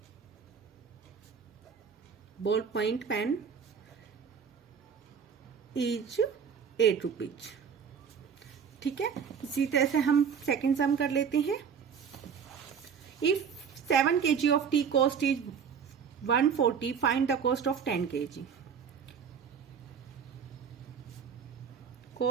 ball point pen is 8 rupees. ठीक है, इसी तरह से हम सेकेंड सम कर लेते हैं। If 7 kg of tea cost is 140, find the cost of 10 kg।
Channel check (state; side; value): quieter; left; 6.9 dB